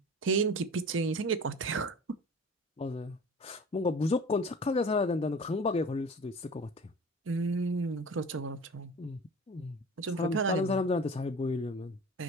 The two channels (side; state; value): both; normal; correlation 0.40